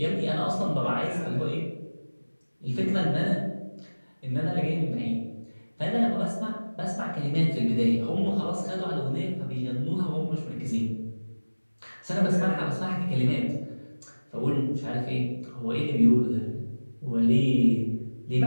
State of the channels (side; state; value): both; inverted; correlation -1.00